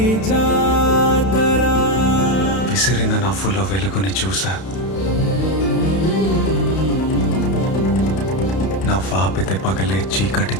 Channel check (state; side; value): late; right; 31 ms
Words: విసిరిన నవ్వుల్లో వెలుగుని చూసా, నవ్వాపితే పగలే చీకటి